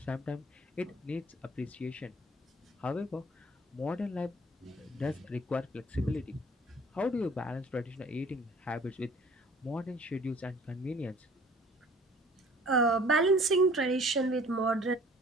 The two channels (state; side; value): normal; both; correlation 0.52